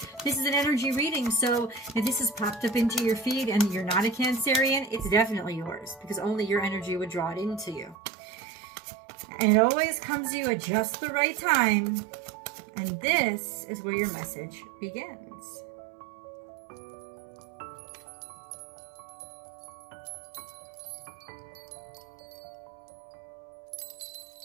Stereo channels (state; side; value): drops out; left; at 8.0 s